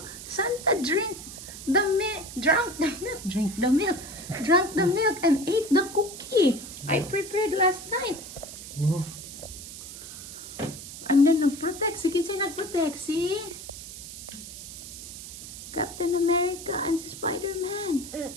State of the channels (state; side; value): noise; right; hiss, 12 dB below the sound